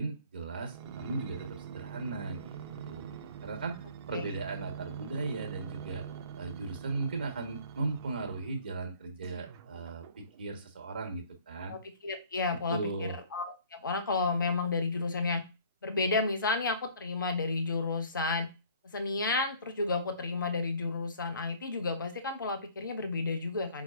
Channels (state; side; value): inverted; both; correlation -0.54